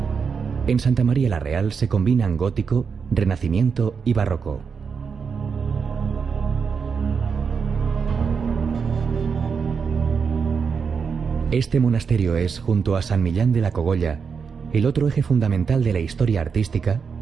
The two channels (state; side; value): quieter; left; 5.9 dB